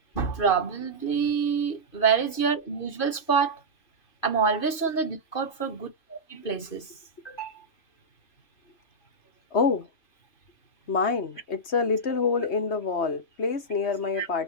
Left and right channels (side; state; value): right; late; 2.5 ms